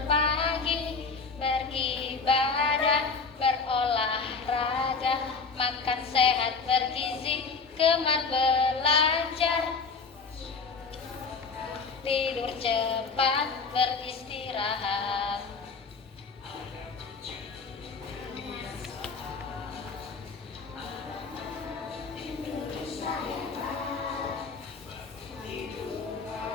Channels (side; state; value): right; quieter; 4.7 dB